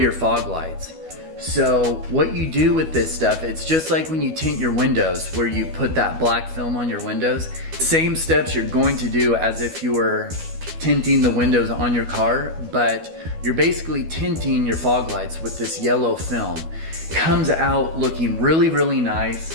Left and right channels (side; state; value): left; late; 12 ms